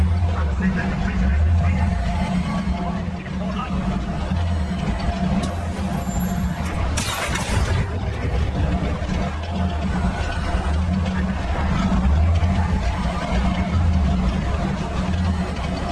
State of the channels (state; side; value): identical; both; correlation 1.00